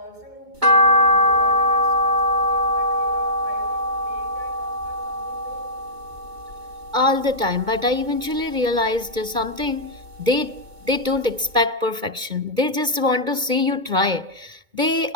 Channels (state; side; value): late; left; 2.2 ms